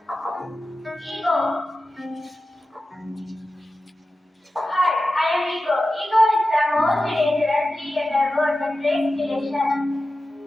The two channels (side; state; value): both; normal; correlation 0.94